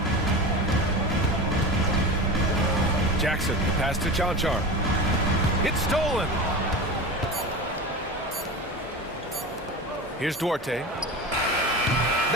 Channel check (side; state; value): both; normal; correlation 0.28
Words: Jackson, pass to Chanchar. It's stolen. Here's Duarte.